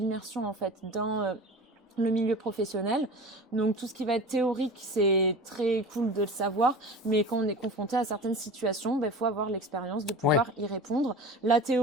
en fait dans le milieu professionnel. Donc tout ce qui va être théorique, c'est très cool de le savoir, mais quand on est confronté à certaines situations, faut avoir l'expérience de pouvoir y répondre. La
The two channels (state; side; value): normal; both; correlation 0.35